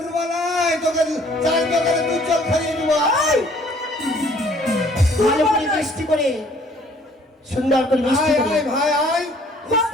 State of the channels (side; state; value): both; normal; correlation 0.58